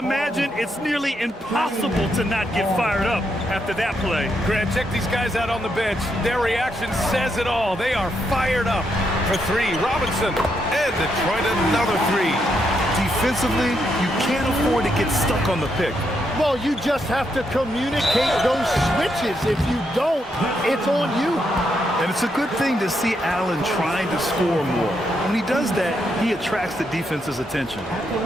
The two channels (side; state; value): both; normal; correlation 0.79